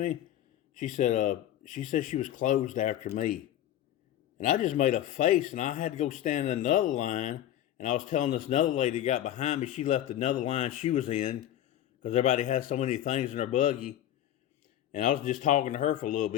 She said, she was closed after me. And I just made a face, and I had to go stand in another line. And I was telling this another lady got behind me, she left another line she was in because everybody has so many things in their buggy. And I was just talking to her for a little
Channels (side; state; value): right; quieter; 12.0 dB